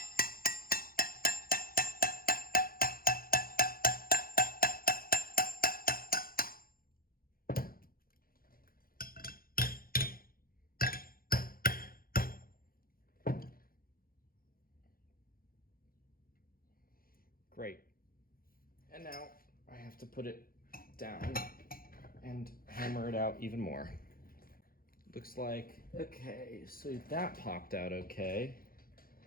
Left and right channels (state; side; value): late; right; 0.42 ms